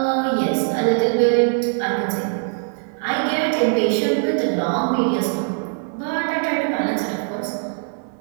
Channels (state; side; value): silent; left; 58 dB below the other